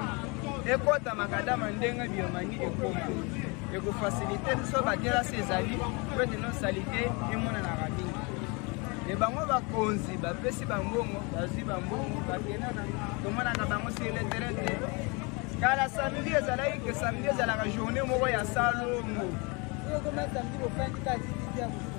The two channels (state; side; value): quieter; right; 29.5 dB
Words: ekota makadama ndenge biomani ekoma ekofasilite so badelasi ezali po ete no salite emonanaka mingi e bango bakonzi bapesi bambongo bazwi bambongo bakendaka tomonaka bango sur le terrain te kala samedi ezalaki ke samedi ezalaka journée moko ya salongo